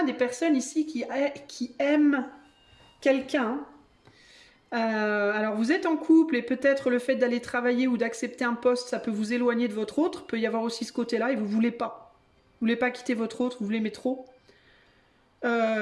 des personnes ici qui aiment quelqu'un. Alors vous êtes en couple et peut-être le fait d'aller travailler ou d'accepter un poste, ça peut vous éloigner de votre autre. Il peut y avoir aussi ce côté-là et vous voulez pas. Vous voulez pas quitter votre autre, vous l'aimez trop.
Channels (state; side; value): identical; both; correlation 1.00